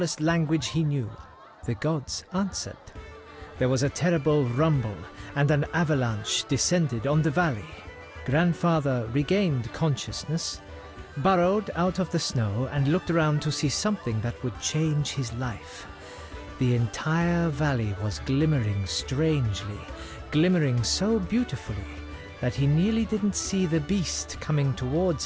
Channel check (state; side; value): identical; both; correlation 1.00